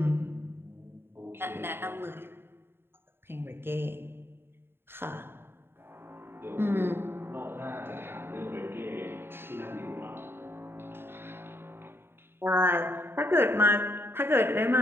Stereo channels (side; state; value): left; late; 0.11 ms